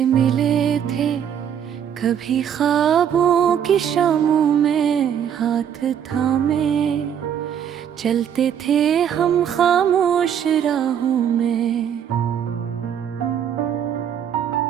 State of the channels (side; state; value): left; quieter; 8.8 dB